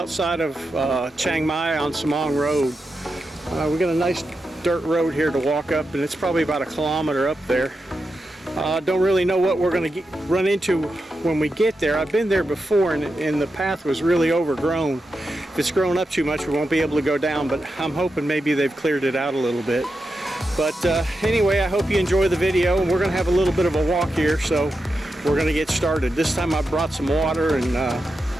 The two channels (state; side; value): normal; both; correlation 0.88